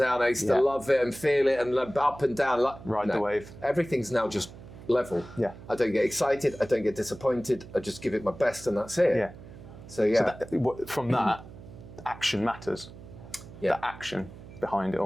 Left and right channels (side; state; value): right; noise; hum, 16 dB below the sound